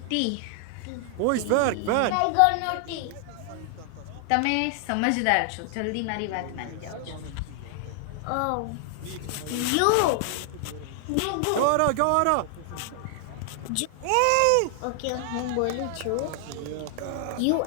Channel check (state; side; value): different; both; correlation 0.00